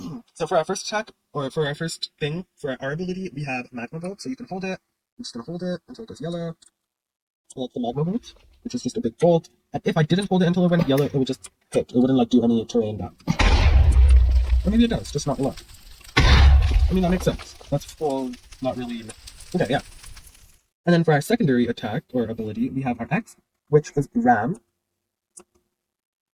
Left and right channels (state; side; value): identical; both; correlation 1.00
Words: So for our first attack, or for our first thing, for our ability, we have Magma Bolt. So you can hold it. I'm just going to hold it until it goes yellow. So that's the Magma Bolt, which is just a big bolt. And if I didn't hold it until it went yellow, it would just hit. It wouldn't like do any terrain damage. Or maybe it does, just not a lot. I mean, that makes sense. That's full, not really... Okay, yeah. And then for our secondary attack, or ability, we have our X, which is Ram.